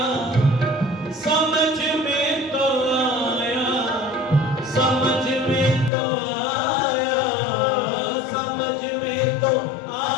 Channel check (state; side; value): drops out; right; at 5.9 s